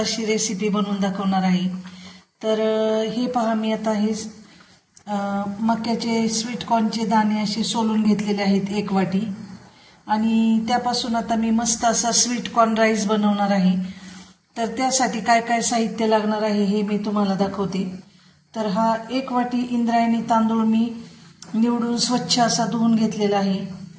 रेसिपी बनवून दाखवणार आहे। तर हे पहा, मी आता हे मक्याचे स्वीट कॉर्नचे दाणे असे सोलून घेतलेले आहेत 1 वाटी, आणि त्यापासून आता मी मस्त असा स्वीट कॉर्न राईस बनवणार आहे। तर त्यासाठी काय काय साहित्य लागणार आहे हे मी तुम्हाला दाखवते। तर हा 1 वाटी इंद्रायणी तांदूळ मी निवडून स्वच्छ असा धुवून घेतलेला आहे।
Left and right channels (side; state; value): both; identical; correlation 1.00